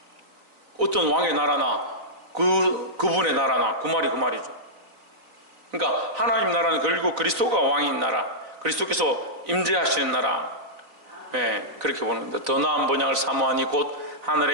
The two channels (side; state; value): left; late; 3.9 ms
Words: 그분의 나라나 그 말이죠. 그러니까 하나님 나라는 결국 그리스도가 왕인 나라, 그리스도께서 임재하시는 나라. 네, 그렇게 보는 겁니다. 더 나은 본향을 사모하니 곧